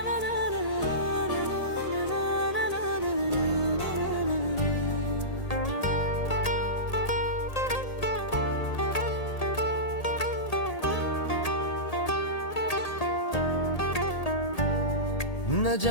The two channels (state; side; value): late; right; 1.8 ms